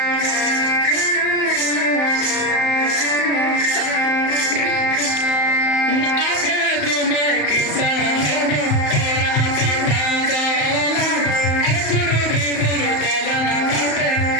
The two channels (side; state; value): right; late; 34 ms